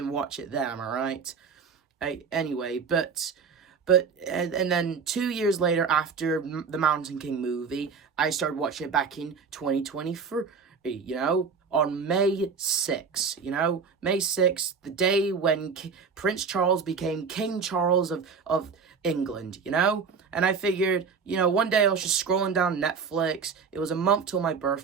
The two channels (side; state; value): left; quieter; 5.6 dB